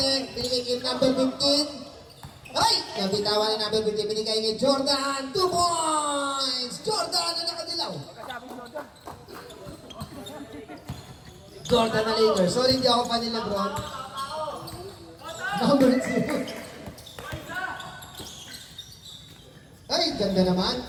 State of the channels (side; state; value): both; identical; correlation 1.00